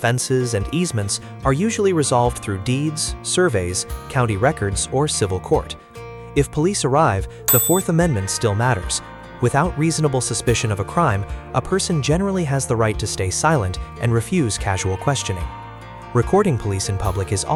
and easements are usually resolved through deeds, surveys, county records, or civil court. If police arrive, the Fourth Amendment still matters. Without reasonable suspicion of a crime, a person generally has the right to stay silent and refuse casual questioning. Recording police in public is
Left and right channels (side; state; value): both; identical; correlation 1.00